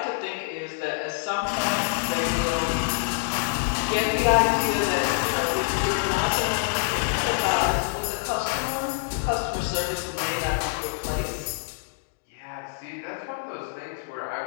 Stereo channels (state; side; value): silent; right; digital silence